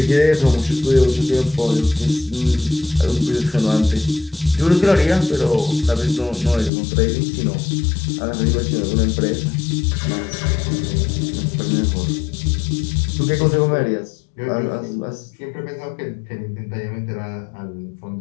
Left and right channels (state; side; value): drops out; right; at 6.7 s